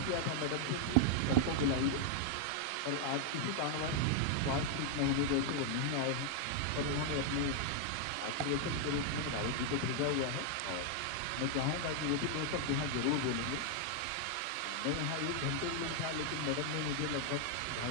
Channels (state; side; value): different; both; correlation 0.00